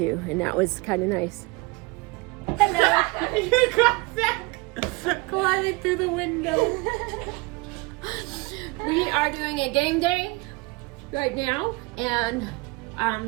and that was kind of nice. Hello. You got back climbing through the window. We are doing a game day right now, and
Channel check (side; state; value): left; quieter; 26.3 dB